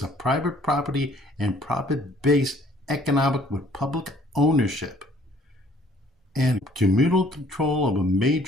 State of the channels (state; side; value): normal; both; correlation 0.59